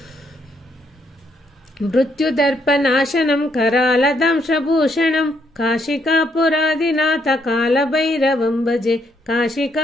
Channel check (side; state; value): both; normal; correlation 0.73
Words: मृत्युदर्पनाशनं करालदंशभूषणं काशिकापुरादिनाथ कालभैरवं भजे